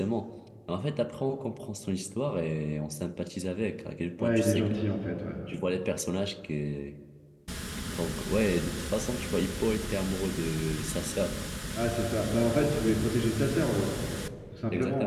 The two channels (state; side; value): identical; both; correlation 1.00